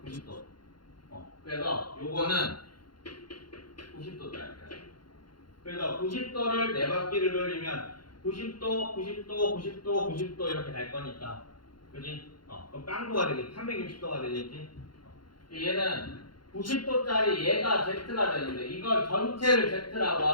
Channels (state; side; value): late; right; 0.72 ms